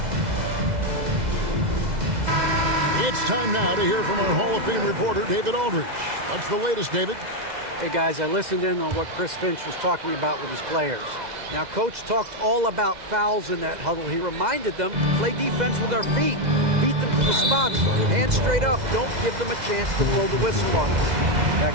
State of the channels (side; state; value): left; late; 2.0 ms